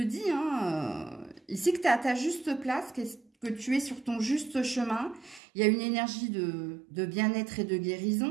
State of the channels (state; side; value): drops out; left; at 5.4 s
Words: ici que tu es à ta juste place, que tu es sur ton juste chemin. Il y a une énergie de bien-être et de